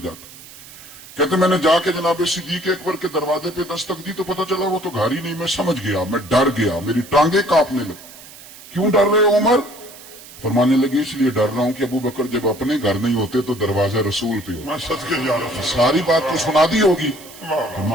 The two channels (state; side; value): noise; right; hiss, 18 dB below the sound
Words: जाता। कहते मैंने जाके जनाबे सिद्दीक अकबर के दरवाजे पे दस्तक दी तो पता चला वो तो घर ही नहीं। मैं समझ गया, मैं डर गया, मेरी टांगे कांपने लगी। क्यों डर रहे हो उमर? फरमाने लगे इसलिए डर रहा हूं कि अबू बकर जब अपने घर नहीं होते तो दरवाजा रसूल पे हो। मैं सच के जा रहा हूं। सारी बात तो सुना दी होगी।